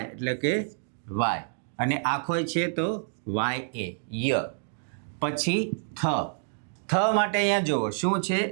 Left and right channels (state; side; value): silent; left; digital silence